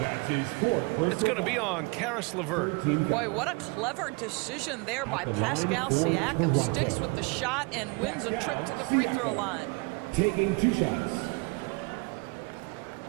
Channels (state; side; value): quieter; left; 29.2 dB